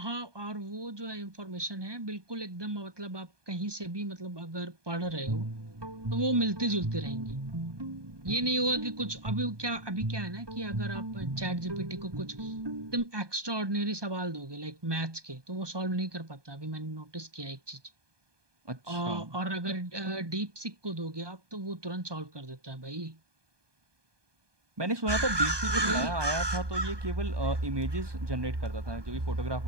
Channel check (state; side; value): late; left; 1.2 ms